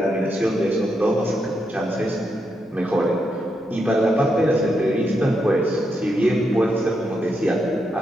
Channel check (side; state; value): both; normal; correlation 0.82